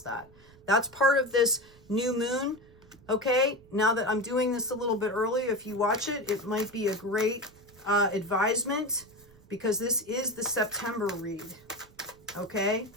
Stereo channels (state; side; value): noise; right; rumble, 25 dB below the sound